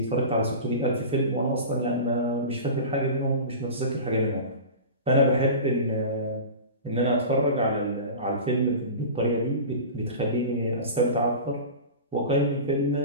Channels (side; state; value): both; inverted; correlation -0.32